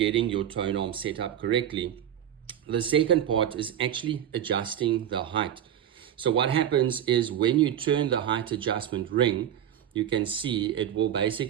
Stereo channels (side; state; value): left; quieter; 10.2 dB